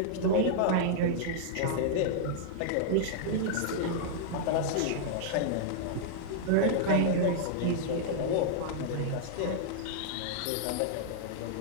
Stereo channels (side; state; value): both; different; correlation -0.02